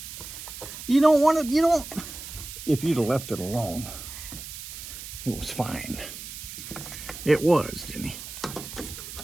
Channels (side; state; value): right; noise; hiss, 11 dB below the sound